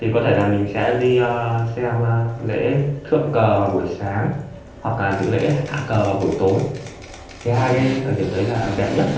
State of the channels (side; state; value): both; identical; correlation 1.00